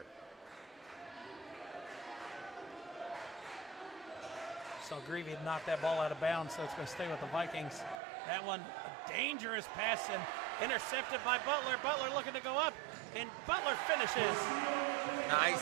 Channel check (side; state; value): left; drops out; at 8.0 s